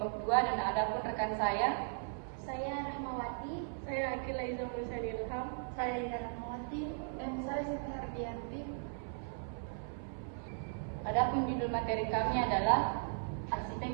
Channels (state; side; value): silent; left; 53 dB below the other